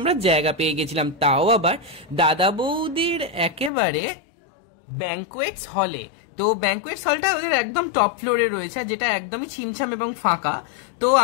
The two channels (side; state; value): right; drops out; at 3.7 s